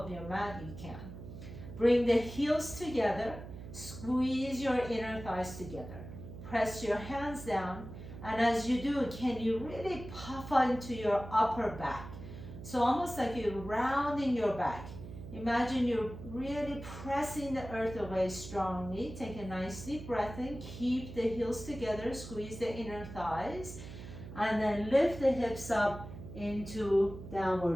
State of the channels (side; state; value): right; noise; hum, 12 dB below the sound